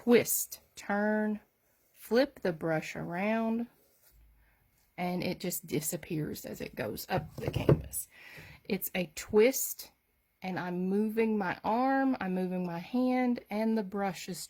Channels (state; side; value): identical; both; correlation 1.00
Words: turn, flip the brush around, and it just disappears as it goes up the canvas. It's a twist, and I'm moving my arm, I'm moving my hand, and the brush is